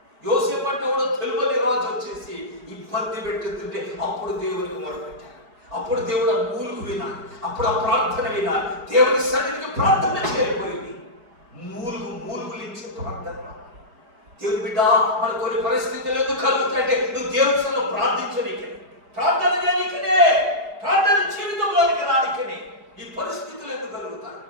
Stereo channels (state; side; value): late; left; 4.7 ms